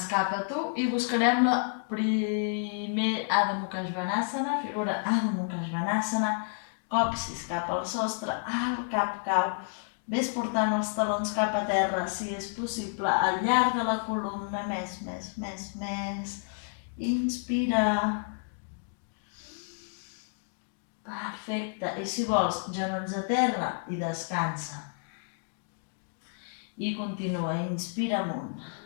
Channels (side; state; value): right; silent; digital silence